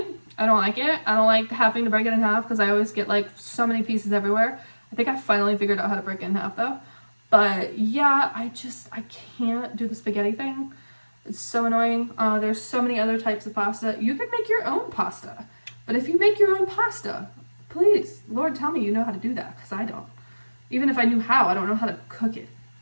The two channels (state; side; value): inverted; both; correlation -1.00